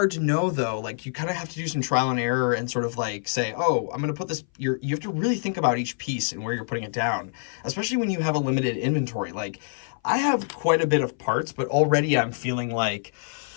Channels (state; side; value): silent; right; 58 dB below the other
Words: to know though. Like you kind of have to do some trial and error and sort of like say, oh, I'm going to put this, you have to really think about each piece and where you're putting it down, especially when you have a limited inventory. Like I have quite a bit of parts, but already I'm feeling like,